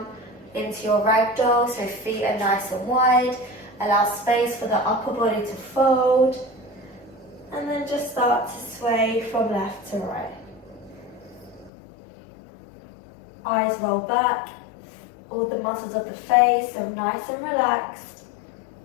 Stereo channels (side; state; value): right; drops out; at 11.7 s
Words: into your ragdoll, so feet are nice and wide. Allow space for the upper body to fold. And then just start to sway from left to right. Eyes roll back. all the muscles of the face, so nice and relaxed.